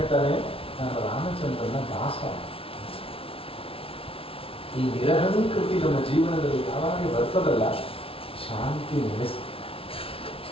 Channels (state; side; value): late; right; 0.26 ms